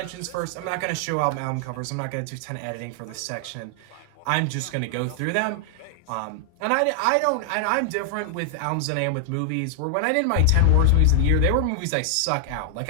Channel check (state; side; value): different; both; correlation 0.00